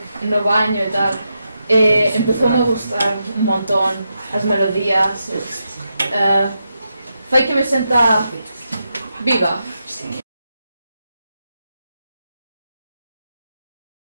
no baño e tal. Empezoume a gustar un montón as melodías. Fai que me senta viva.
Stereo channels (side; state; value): both; inverted; correlation -0.85